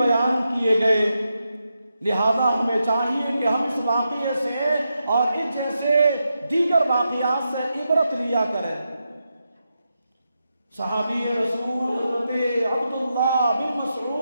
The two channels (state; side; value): inverted; both; correlation -0.86